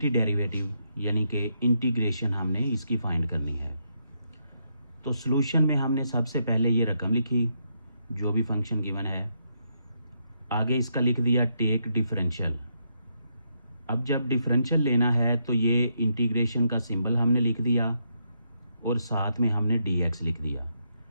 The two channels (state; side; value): inverted; both; correlation -0.79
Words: डेरिवेटिव यानी कि इंटीग्रेशन हमने इसकी फाइंड करनी है। तो सॉल्यूशन में हमने सबसे पहले ये रकम लिखी जो भी फंक्शन गिवन है, आगे इसका लिख दिया टेक डिफरेंशियल। अब जब डिफरेंशियल लेना है तो ये इंटीग्रेशन का सिंबल हमने लिख दिया और साथ में हमने dx लिख दिया।